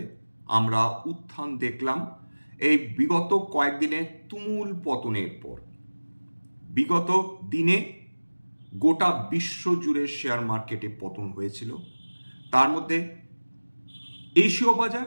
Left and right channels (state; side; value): inverted; both; correlation -1.00